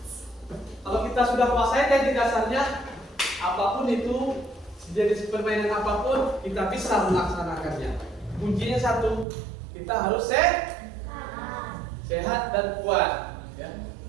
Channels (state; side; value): drops out; left; at 9.2 s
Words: sudah kuasai teknik dasarnya, apapun itu jenis permainan apapun kita bisa melaksanakannya. Kuncinya satu, kita harus sehat dan kuat ya.